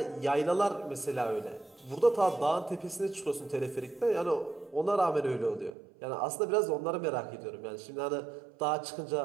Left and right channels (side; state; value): left; drops out; at 5.8 s